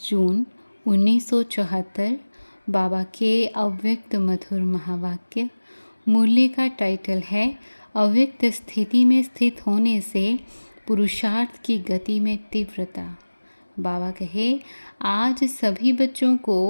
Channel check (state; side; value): inverted; both; correlation -1.00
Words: जून 1974 बाबा के अव्यक्त मधुर महावाक्य। मूल्य का टाइटल है अव्यक्त स्थिति में स्थित होने से पुरुषार्थ की गति में तीव्रता। बाबा कहे, आज सभी बच्चों